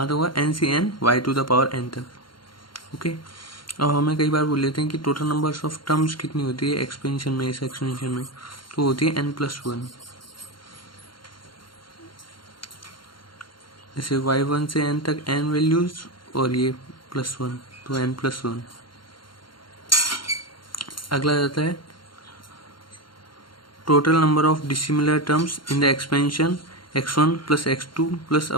तक होगा? N C n y to the power n तक, ओके। और हमें कई बार बोल लेते हैं कि टोटल नंबर्स ऑफ टर्म्स कितनी होती है एक्सपेंशन में, इस एक्सपेंशन में, तो होती है एन प्लस 1। जैसे y1 से n तक n वैल्यूज और ये +1, तो n प्लस 1। अगला जाता है total number of dissimilar terms in the expansion x1 plus x2 plus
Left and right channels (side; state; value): right; late; 0.72 ms